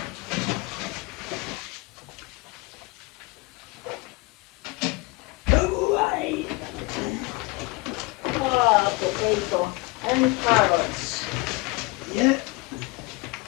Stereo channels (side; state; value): right; quieter; 25.0 dB